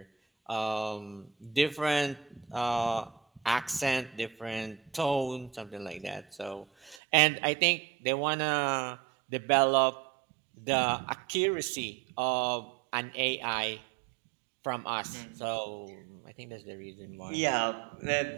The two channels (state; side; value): drops out; left; at 7.0 s